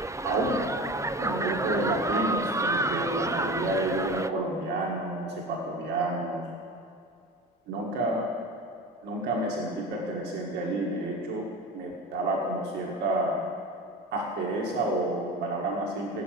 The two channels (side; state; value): both; normal; correlation 0.32